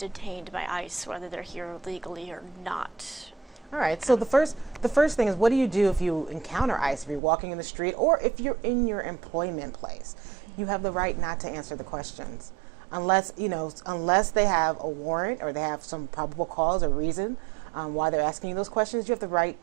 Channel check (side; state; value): left; drops out; at 7.2 s